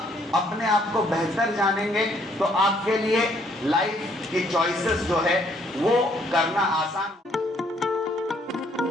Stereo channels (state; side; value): normal; both; correlation 0.66